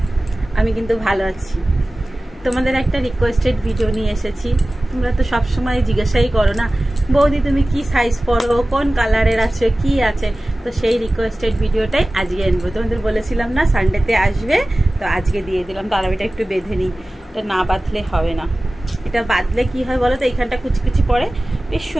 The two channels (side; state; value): both; normal; correlation 0.97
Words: আমি কিন্তু ভালো আছি। তোমাদের একটা রিকোয়েস্টেড ভিডিও নিয়ে এসেছি। তোমরা তো সবসময় জিজ্ঞাসাই করো না, বৌদি তুমি কি সাইজ পরো, কোন কালারের আছে, কি আছে। তো সেই রিকোয়েস্টেড ভিডিওটাই আজকে আনবো। তোমাদের বলেছিলাম না সানডেতে আসবে, তো আজকে দিয়ে দিলাম। তো আরবিটা একটু বেঁধে নিই, এটা না বাঁধলে হবে না। এটা বাঁধলে কি হয় বলো তো, এইখানটা কুচি পড়ে, বেশ